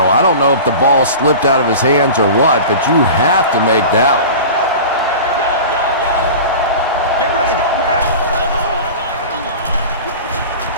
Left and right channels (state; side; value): inverted; both; correlation -0.34